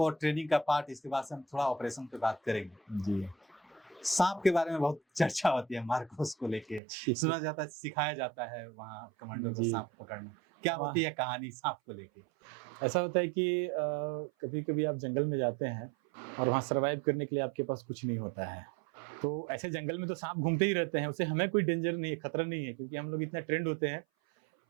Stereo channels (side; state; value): left; drops out; at 6.8 s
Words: ट्रेनिंग का पार्ट, इसके बाद से हम थोड़ा ऑपरेशन पे बात करेंगे जी। सांप के बारे में बहुत चर्चा होती है मार्कोस को लेके, सुना जाता है, सिखाया जाता है वहाँ कमांडो को सांप पकड़ना। क्या होती है कहानी सांप को लेके? ऐसा होता है कि कभी कभी आप जंगल में जाते हैं और वहाँ सर्वाइव करने के लिए आपके पास कुछ नहीं होता है, तो ऐसे जंगल में तो सांप घूमते ही रहते हैं, उससे हमें कोई डेंजर नहीं है, खतरा नहीं है, क्योंकि हम लोग इतना ट्रेंड होते हैं